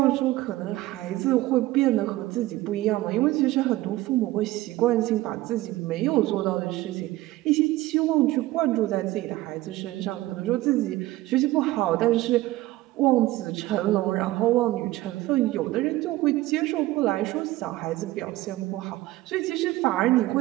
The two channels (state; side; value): quieter; left; 17.3 dB